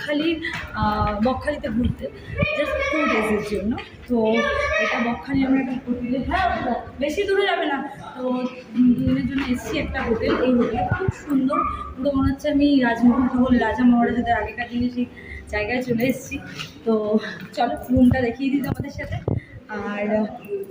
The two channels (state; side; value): identical; both; correlation 1.00